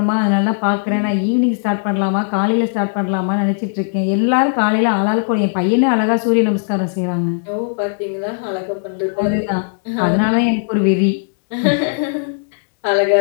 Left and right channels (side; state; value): right; silent; digital silence